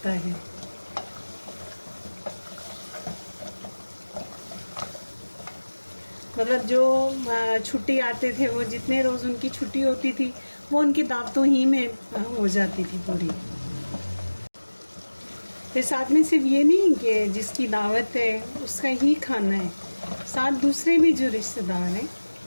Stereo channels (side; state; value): both; inverted; correlation -1.00